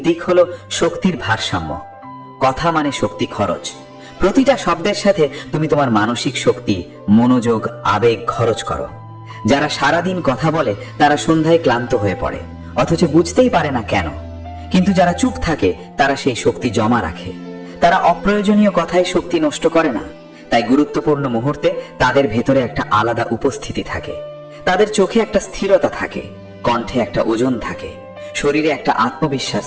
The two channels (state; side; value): identical; both; correlation 1.00